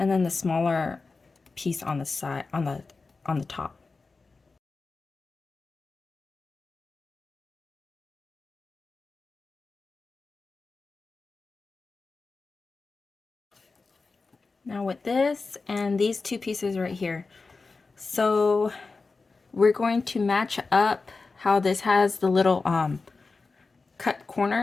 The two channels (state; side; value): quieter; right; 4.0 dB